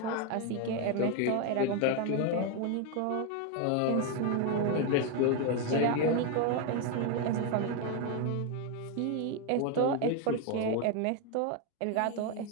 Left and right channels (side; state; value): both; different; correlation 0.01